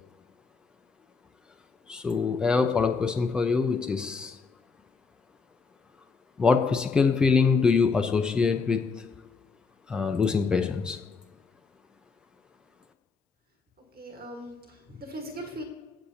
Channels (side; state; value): right; quieter; 4.8 dB